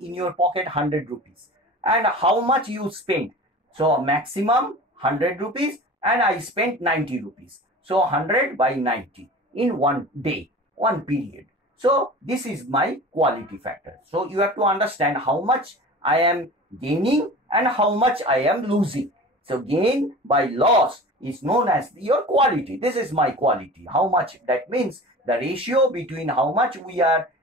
in your pocket 100 rupees. and how much you spent. So maximum 100 rupees and I spent 90 rupees. So 100 by 90 in one day, one period. So this is my quality factor. So you have to understand how much I am gaining and how much I am losing. So gain by loss is known as your quality. This is my quality. How much? That means the ratio between how much we are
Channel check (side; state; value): both; normal; correlation 0.38